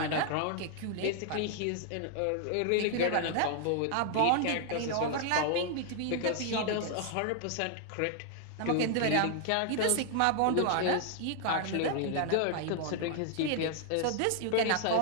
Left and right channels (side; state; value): both; different; correlation 0.00